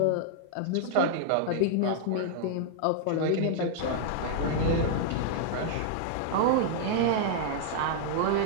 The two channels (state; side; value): different; both; correlation -0.01